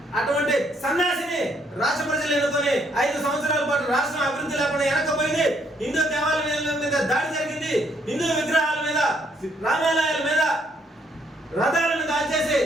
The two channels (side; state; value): both; normal; correlation 0.69